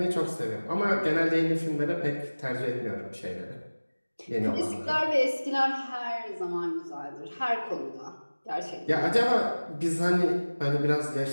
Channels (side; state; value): both; inverted; correlation -1.00